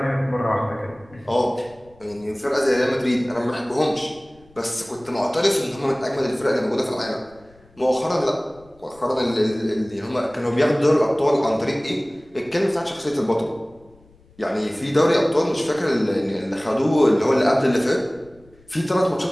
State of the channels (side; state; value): left; noise; rumble, 29 dB below the sound